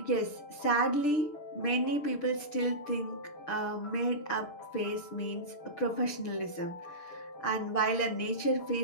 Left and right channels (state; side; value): late; right; 6.7 ms